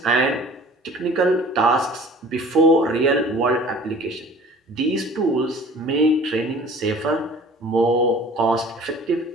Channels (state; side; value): normal; both; correlation 0.47